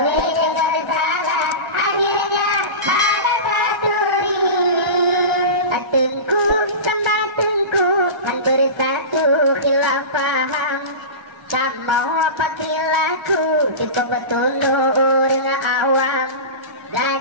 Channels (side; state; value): left; late; 1.3 ms